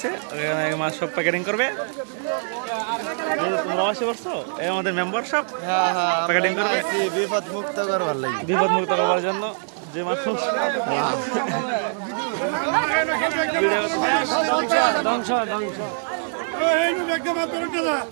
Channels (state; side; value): silent; left; digital silence